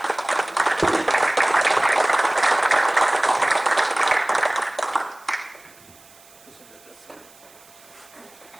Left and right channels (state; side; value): noise; right; hiss, 26 dB below the sound